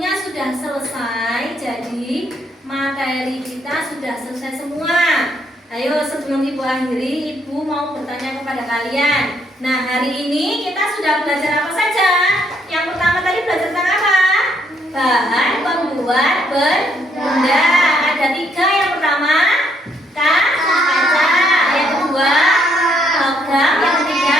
sudah selesai. Jadi tadi materi kita sudah selesai semua. Ayo sebelum Ibu akhiri, Ibu mau bertanya kepada kalian. Nah, hari ini kita sudah belajar apa saja? Yang pertama tadi belajar tentang apa? Bahan pembuat benda. Ada 3. Yang pertama kaca. Yang kedua logam. Yang ketiga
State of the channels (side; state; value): both; normal; correlation 0.71